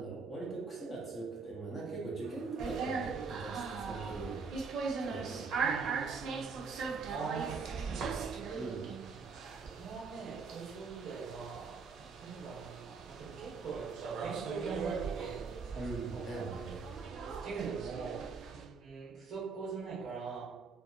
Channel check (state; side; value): quieter; left; 4.8 dB